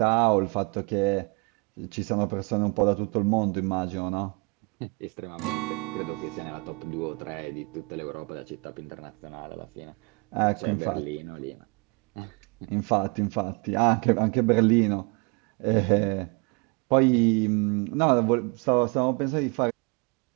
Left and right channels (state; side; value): quieter; left; 30.8 dB